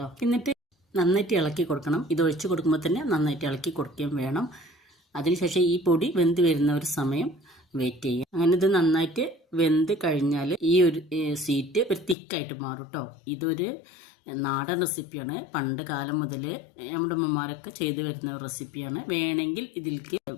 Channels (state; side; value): drops out; right; at 12.2 s